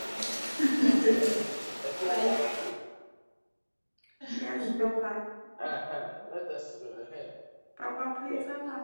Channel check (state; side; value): inverted; both; correlation -1.00